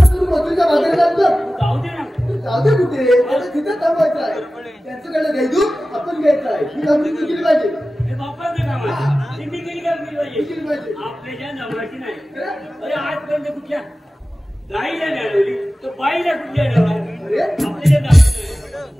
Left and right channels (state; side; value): normal; both; correlation 0.96